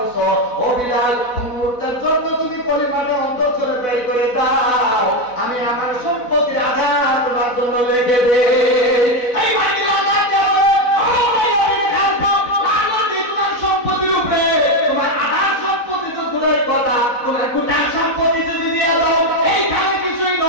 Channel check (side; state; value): right; late; 4.0 ms